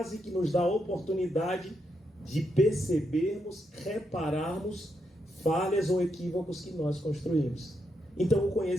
que nos dá a oportunidade de percebermos, repararmos falhas ou equívocos que nós construímos. Então o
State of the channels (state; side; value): normal; both; correlation 0.81